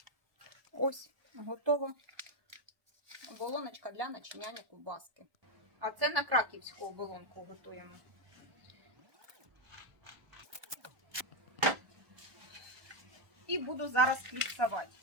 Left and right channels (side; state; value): left; late; 1.2 ms